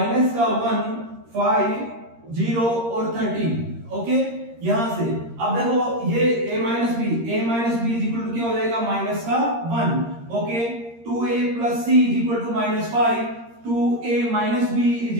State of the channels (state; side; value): late; left; 13 ms